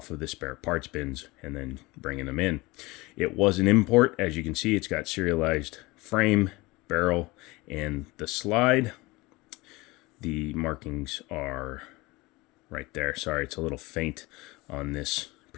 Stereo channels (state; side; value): quieter; right; 22.4 dB